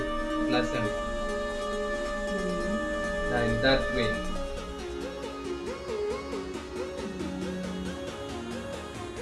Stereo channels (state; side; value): identical; both; correlation 1.00